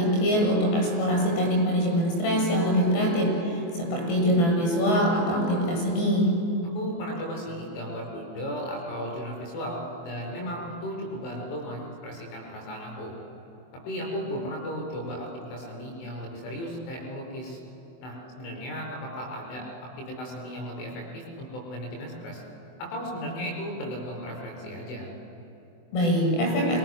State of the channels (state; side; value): late; right; 24 ms